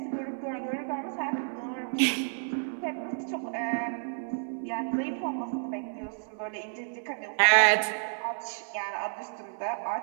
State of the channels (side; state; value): left; silent; 57 dB below the other